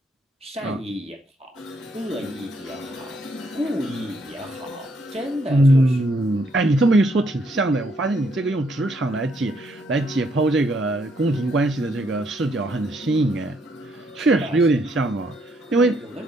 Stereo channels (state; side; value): normal; both; correlation 0.72